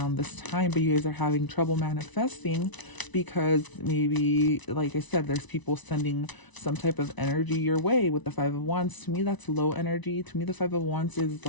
this time, but you guys are having trouble manifesting because maybe, like I said, there's people sending some type of energy your way with the 5 of Wands. To me, that's low energy. To me, the 5 of Wands is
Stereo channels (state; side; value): late; right; 1.0 ms